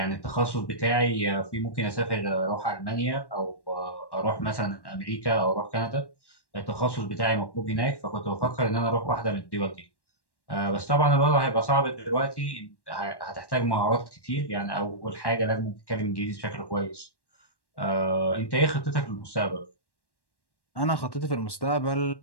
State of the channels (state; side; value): late; right; 1.1 ms